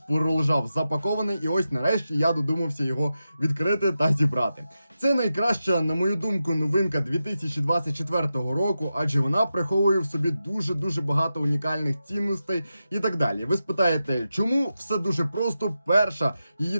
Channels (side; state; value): both; inverted; correlation -0.90